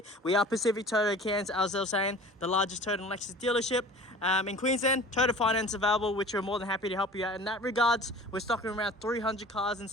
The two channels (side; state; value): both; normal; correlation 0.43